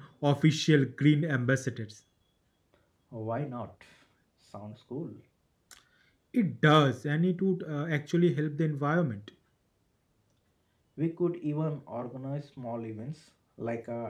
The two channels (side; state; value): both; identical; correlation 1.00